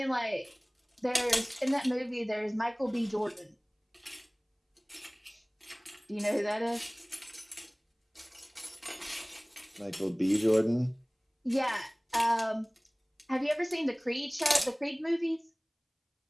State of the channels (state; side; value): identical; both; correlation 1.00